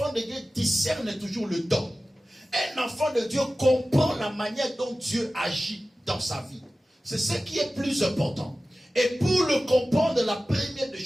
de Dieu discerne toujours le don. Un enfant de Dieu comprend la manière dont Dieu agit dans sa vie. C'est ce qui est plus important. Et pour le comprendre, la première des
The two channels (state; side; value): normal; both; correlation 0.96